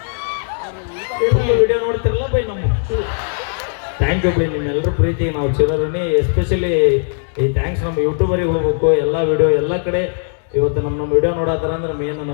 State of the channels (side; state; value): right; silent; digital silence